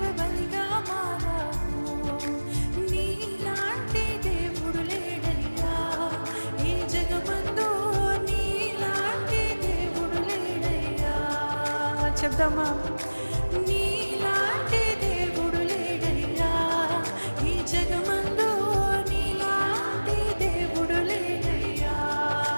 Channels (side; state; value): both; inverted; correlation -1.00